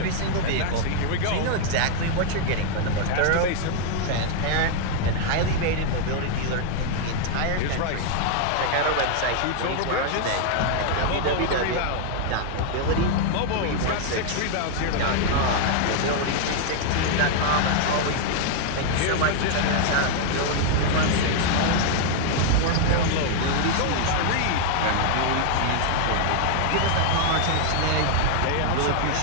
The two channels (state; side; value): different; both; correlation 0.00